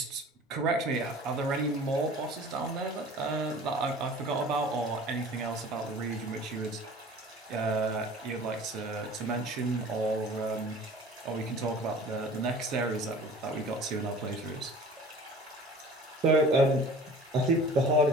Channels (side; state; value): both; normal; correlation 0.44